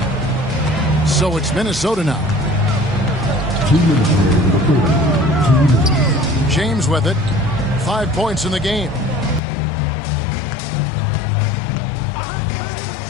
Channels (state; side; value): drops out; right; at 9.4 s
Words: So it's Minnesota now. James with it. 5 points in the game.